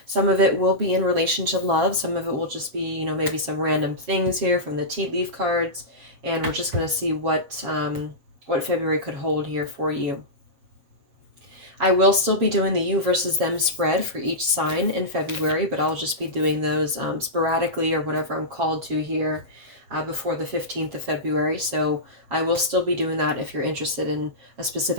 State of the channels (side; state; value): left; late; 7.3 ms